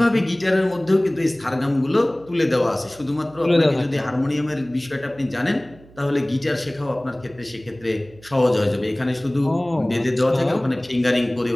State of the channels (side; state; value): right; noise; hum, 24 dB below the sound